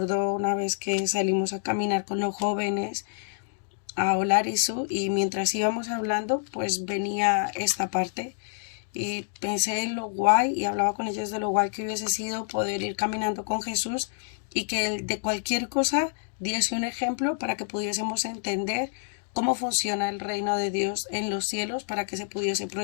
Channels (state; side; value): silent; right; digital silence